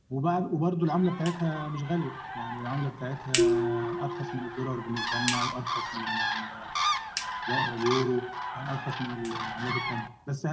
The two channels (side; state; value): both; identical; correlation 1.00